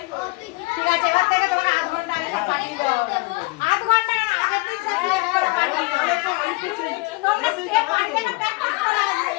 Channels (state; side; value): quieter; right; 25.1 dB